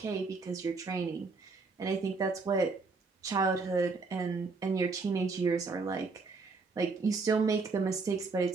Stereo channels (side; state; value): left; quieter; 4.2 dB